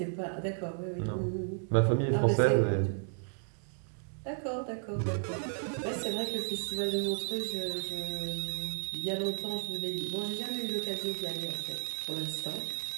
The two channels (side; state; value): left; silent; 55 dB below the other